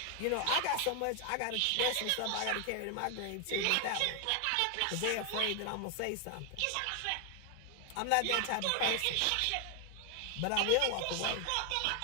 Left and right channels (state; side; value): different; both; correlation 0.00